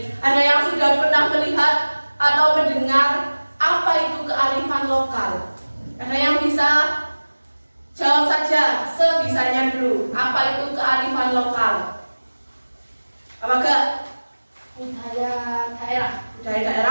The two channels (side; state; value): both; inverted; correlation -1.00